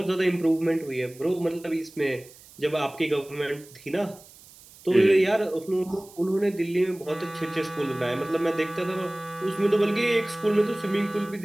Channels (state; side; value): noise; right; hiss, 22 dB below the sound